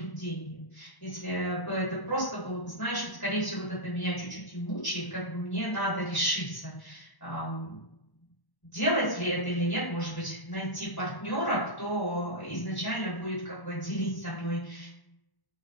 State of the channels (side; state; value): right; late; 1.0 ms